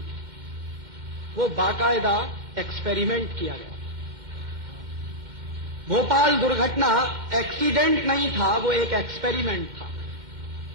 वो बाकायदा एक्सपेरिमेंट किया गया। भोपाल दुर्घटना एक्सीडेंट नहीं था, वो एक एक्सपेरिमेंट था।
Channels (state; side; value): late; left; 2.1 ms